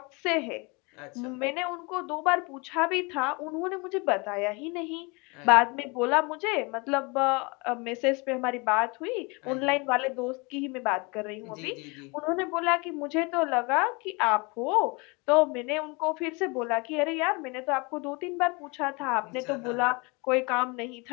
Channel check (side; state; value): right; quieter; 28.6 dB